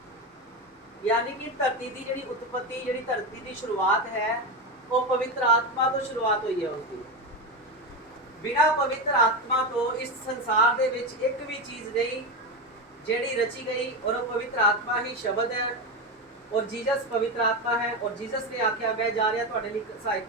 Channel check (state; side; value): normal; both; correlation 0.16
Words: ਯਾਨੀ ਕਿ ਧਰਤੀ ਦੀ ਜਿਹੜੀ ਉਤਪਤੀ, ਜਿਹੜੀ ਧਰਤੀ ਦੀ ਸ਼ੁਰੂਆਤ ਹੈ, ਉਹ ਪਵਿੱਤਰ ਆਤਮਾ ਤੋਂ ਸ਼ੁਰੂਆਤ ਹੋਈ ਹੈ ਉਸਦੀ। ਬਿਨਾਂ ਪਵਿੱਤਰ ਆਤਮਾ ਤੋਂ ਇਸ ਸੰਸਾਰ ਦੇ ਵਿੱਚ ਇੱਕ ਵੀ ਚੀਜ਼ ਨਹੀਂ ਜਿਹੜੀ ਰਚੀ ਗਈ, ਔਰ ਉਹ ਪਵਿੱਤਰ ਆਤਮਾ ਹੀ ਸ਼ਬਦ ਹੈ, ਔਰ ਜੀਸਸ ਪਵਿੱਤਰ आत्मा है। और जीसस ने आख्या मैं जा रहा ਤੁਹਾਡੇ ਲਈ ਸਹਾਇਕ